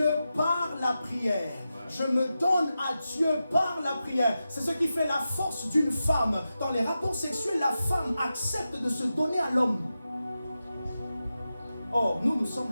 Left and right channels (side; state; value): both; inverted; correlation -0.91